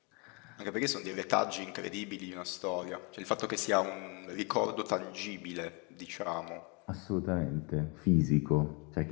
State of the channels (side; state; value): right; quieter; 31.8 dB